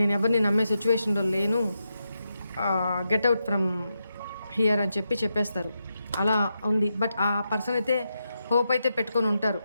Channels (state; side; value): inverted; both; correlation -0.85